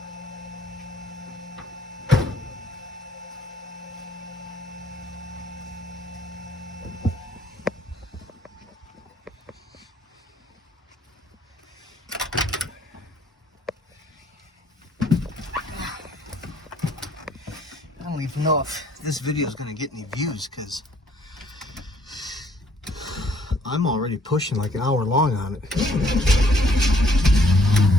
I don't even know if this video is going to get any views because I'm already pushing like an hour long on it.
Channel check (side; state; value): both; normal; correlation 0.63